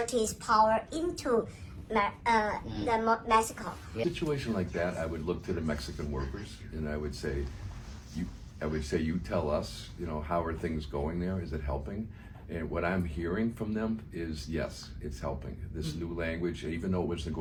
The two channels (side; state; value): both; identical; correlation 1.00